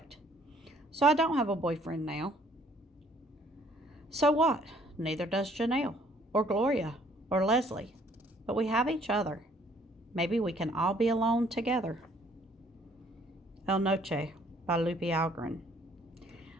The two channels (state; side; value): normal; both; correlation 0.62